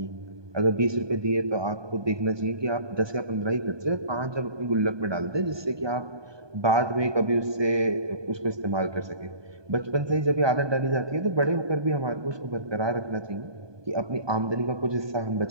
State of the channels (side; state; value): left; late; 1.2 ms